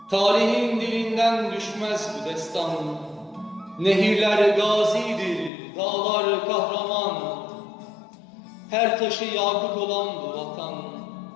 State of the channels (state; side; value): drops out; right; at 5.5 s